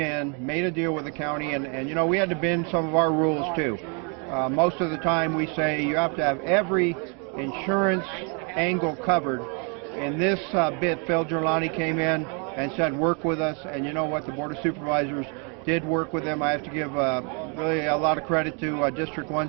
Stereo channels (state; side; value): quieter; left; 37.0 dB